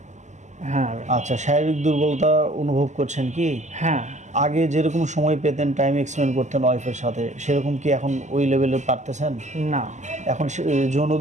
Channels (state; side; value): late; left; 0.34 ms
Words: হ্যাঁ। আচ্ছা, শারীরিক দুর্বলতা অনুভব করছেন কি? হ্যাঁ। আগে যেরকম সময় পেতেন, টাইম এক্সপেন্ড করতেন ওয়াইফের সাথে, সেরকম কি এখন ওই লেভেলে পারতেছেন? না। এখন যৌন